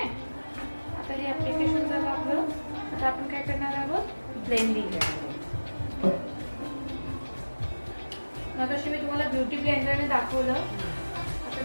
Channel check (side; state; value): both; inverted; correlation -1.00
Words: आता हे ऍप्लिकेशन झालं आपलं. आता आपण काय करणार आहोत, ब्लेंडिंग. मग अशी मी तुम्हाला ब्युटी ब्लेंडरने दाखवलं.